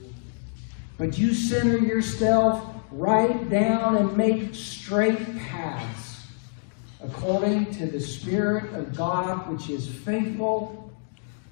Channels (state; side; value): silent; right; digital silence